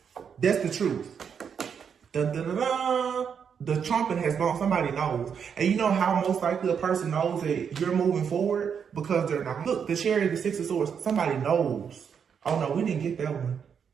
That's the truth. Dun, dun, dun, dun. The trumpet has gone. Somebody knows. And you know how most likely a person knows that you're moving forward? Because they're not. Look, the Chariot, the Six of Swords, somebody knows. Oh no, we didn't get that one.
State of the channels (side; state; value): left; quieter; 7.2 dB